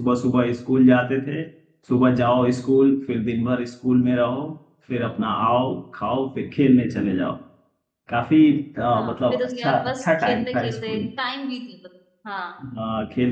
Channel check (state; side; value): identical; both; correlation 1.00